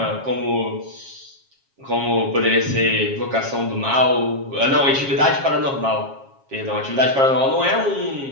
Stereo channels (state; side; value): late; left; 7.4 ms